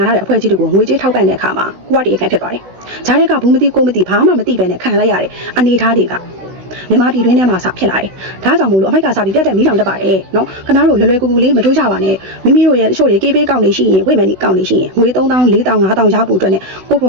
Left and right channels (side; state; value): left; late; 16 ms